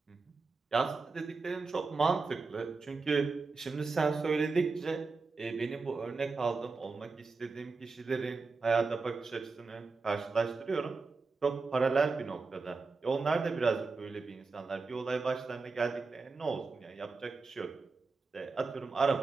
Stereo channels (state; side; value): quieter; left; 4.2 dB